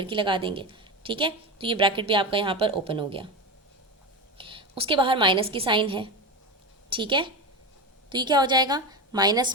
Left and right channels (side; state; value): both; normal; correlation 0.20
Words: की लगा देंगे, ठीक है। तो ये ब्रैकेट भी आपका यहाँ पर ओपन हो गया। उसके बाहर माइनस की साइन है, ठीक है। तो ये क्या हो जाएगा, माइनस